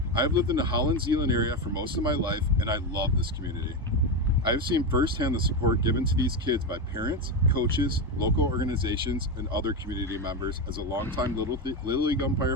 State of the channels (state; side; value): normal; both; correlation 0.13